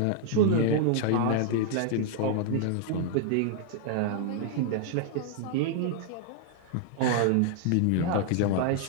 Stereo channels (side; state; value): both; different; correlation -0.01